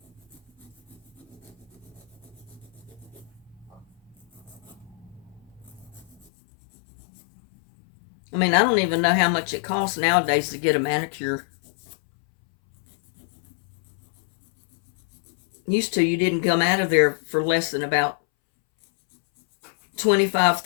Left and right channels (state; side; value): drops out; right; at 6.2 s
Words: I mean, I don't even know how much it costs nowadays to get a manicure. Used to, you didn't come out of there for less than about $25,